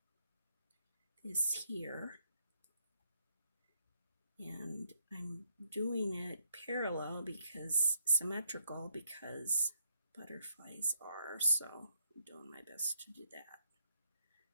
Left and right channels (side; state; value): both; inverted; correlation -0.74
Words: this here. And I'm doing it parallel because symmetrical because butterflies are, so I'm doing my best to do that.